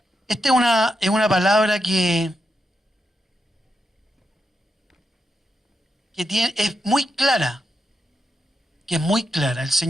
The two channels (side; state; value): both; normal; correlation 0.85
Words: Esta es una palabra que es muy clara, El